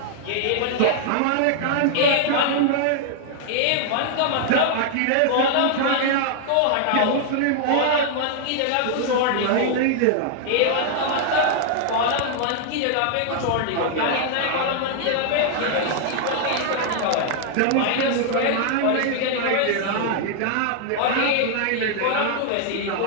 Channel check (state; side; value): different; both; correlation 0.00